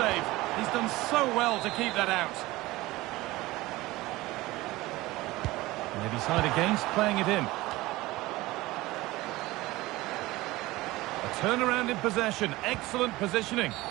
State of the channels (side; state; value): left; quieter; 19.2 dB